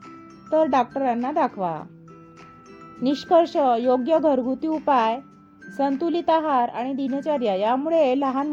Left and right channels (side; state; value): both; identical; correlation 1.00